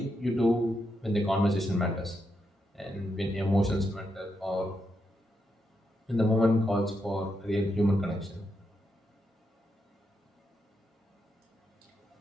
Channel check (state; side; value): normal; both; correlation 0.83